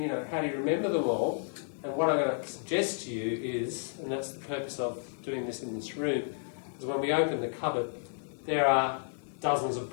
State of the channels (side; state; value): right; silent; 57 dB below the other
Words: you know, how do you remember them all? And what I'm going to suggest to you is, and that's the purpose of doing this in this room, is when we open the cupboard, there are dozens of